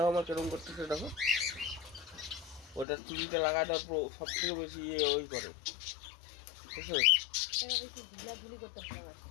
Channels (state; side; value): drops out; right; at 2.9 s